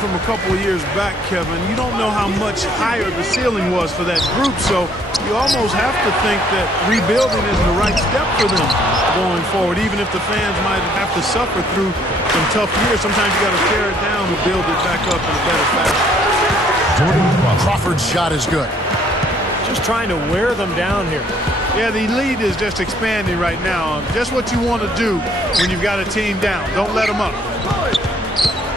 from a couple of years back, Kevin, you don't know how much higher the ceiling was for that group, so you almost have to think that rebuilding is the right step for them going forward, even if the fans might have to suffer through some tough years. Sometimes you got to tear it down to build it back up in a better fashion. Crawford's shot is good. Just trying to wear them down here. Yeah, the lead is just expanding right now. Just what you want to do when you've got a team down. Don't let them up.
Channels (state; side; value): normal; both; correlation 0.63